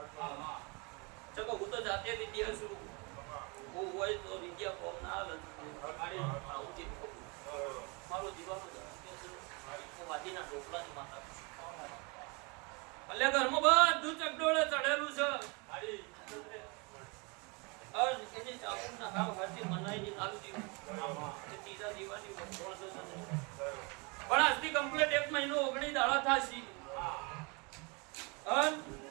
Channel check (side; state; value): left; quieter; 30.2 dB